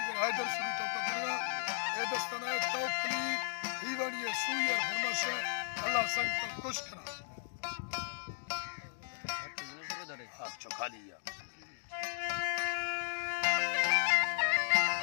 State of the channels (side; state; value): right; silent; 54 dB below the other